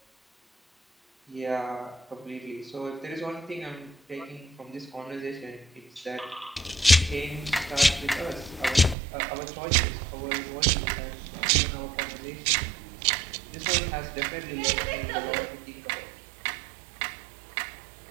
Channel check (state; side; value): drops out; left; at 9.0 s